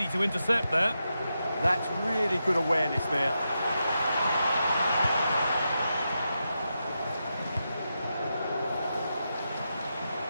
to intercept there. That's really good awareness there.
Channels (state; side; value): inverted; both; correlation -0.87